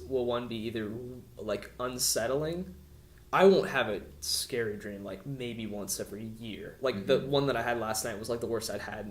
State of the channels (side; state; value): both; identical; correlation 1.00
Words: will one be either like unsettling. I won't have a scary dream like maybe once every year. Like the one that I had last night was like the worst I'd had